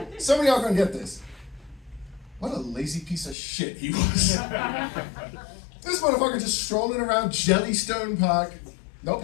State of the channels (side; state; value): right; drops out; at 3.4 s